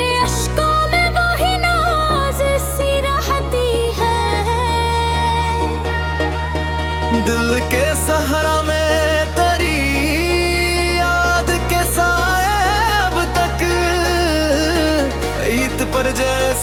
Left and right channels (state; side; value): identical; both; correlation 1.00